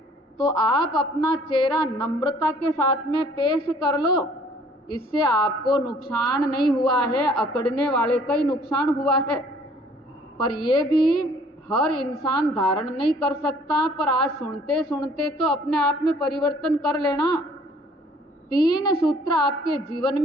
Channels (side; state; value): both; normal; correlation 0.57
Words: तो आप अपना चेहरा नम्रता के साथ में पेश कर लो, इससे आपको नुकसान नहीं हुआ है, अकड़ने वाले का ही नुकसान हुआ है। पर ये भी हर इंसान धारण नहीं कर सकता, पर आज सुनते सुनते तो अपने आप में परिवर्तन कर लेना। 3 सूत्र आपके जीवन